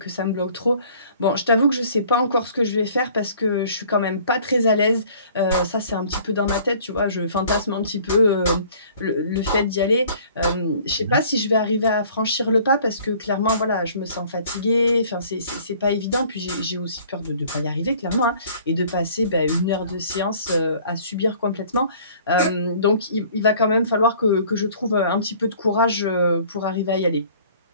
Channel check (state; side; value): inverted; both; correlation -0.53